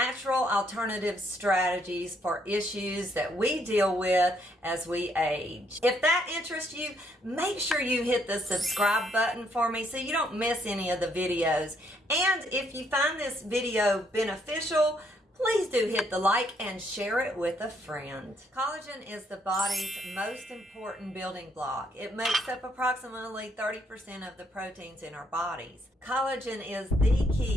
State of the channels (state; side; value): normal; both; correlation 0.71